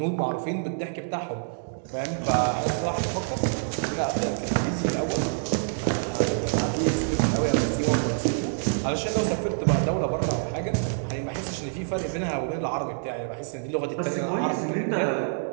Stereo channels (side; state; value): left; silent; digital silence